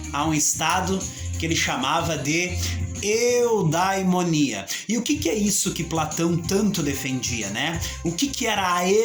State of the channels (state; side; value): identical; both; correlation 1.00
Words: a um estado que ele chamava de eudaimonia. E o que é isso que Platão tanto defendia, né? O que era a